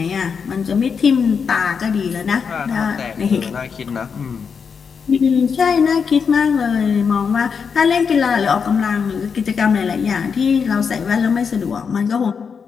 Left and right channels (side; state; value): right; quieter; 6.1 dB